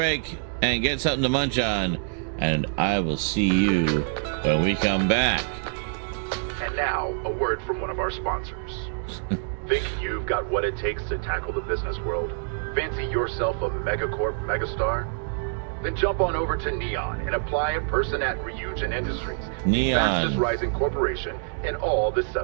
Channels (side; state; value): left; silent; digital silence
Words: and get something to munch on, and I will see you when we come back. And now, a word from one of our sponsors. Think you've got what it takes to tackle the business world? Fancy yourself a megacorp megastar? Then jump on over to Neon and apply in person at Ryujin Industries, Neon, fastest rising corporation in all the